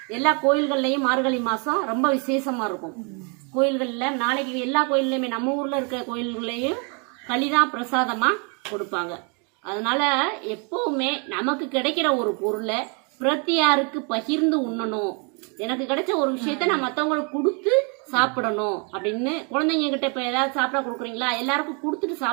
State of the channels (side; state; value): left; quieter; 35.9 dB